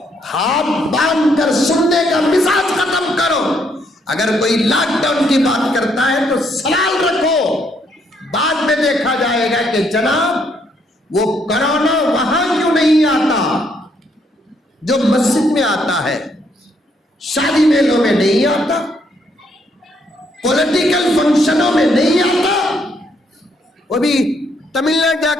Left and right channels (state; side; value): normal; both; correlation 0.72